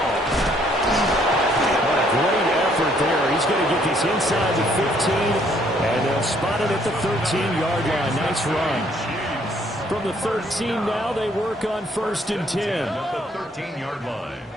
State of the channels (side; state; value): both; normal; correlation 0.65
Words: What a great effort there. He's going to get this inside the 15, and they'll spot it at the 13-yard line. Nice run. From the 13 now, they work on 1st and 10. At the 13-yard line.